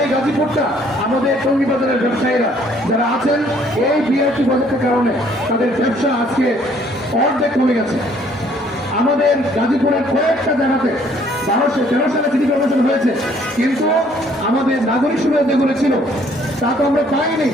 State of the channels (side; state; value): both; normal; correlation 0.62